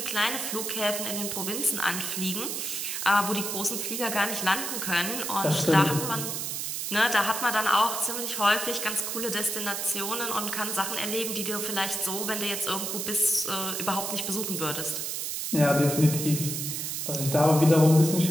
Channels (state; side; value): noise; right; hiss, 3 dB below the sound